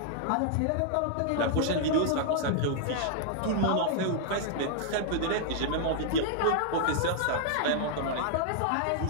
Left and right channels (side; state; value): both; different; correlation -0.01